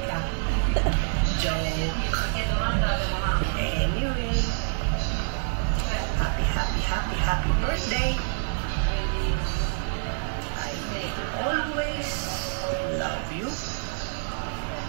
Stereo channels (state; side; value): silent; left; 60 dB below the other